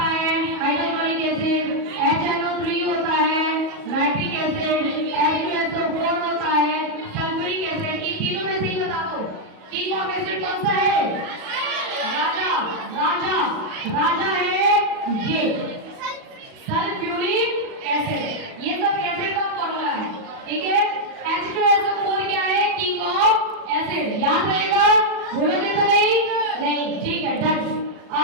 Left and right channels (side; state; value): left; late; 37 ms